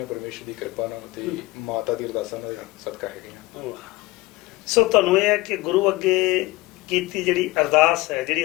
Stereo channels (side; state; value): right; quieter; 20.4 dB